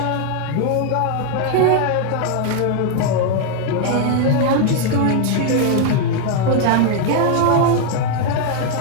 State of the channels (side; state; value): both; different; correlation 0.00